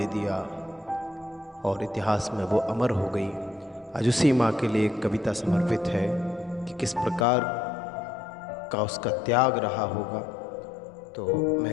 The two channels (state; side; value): drops out; right; at 7.2 s